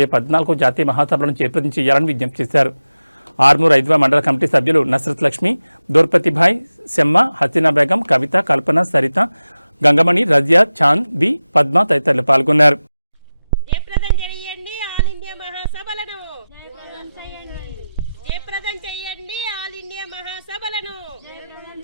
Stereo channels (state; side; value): inverted; both; correlation -0.95